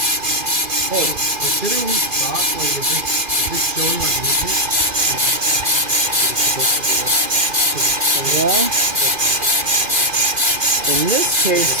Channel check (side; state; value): left; late; 2.4 ms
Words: Hey, considering we stop, like, is this showing like movement? Well, in this case,